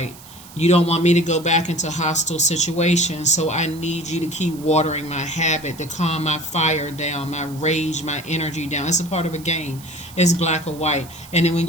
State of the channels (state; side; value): noise; right; hiss, 19 dB below the sound